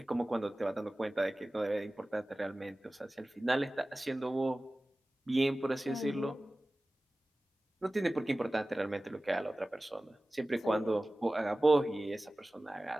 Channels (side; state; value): both; normal; correlation 0.97